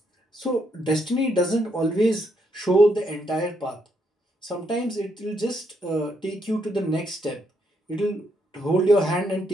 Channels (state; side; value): normal; both; correlation 0.76